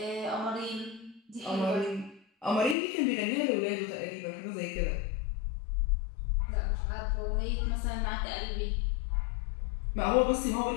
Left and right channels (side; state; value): right; drops out; at 2.8 s